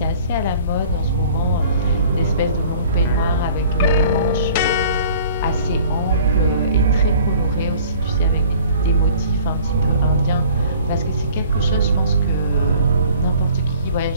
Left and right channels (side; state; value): both; inverted; correlation -0.51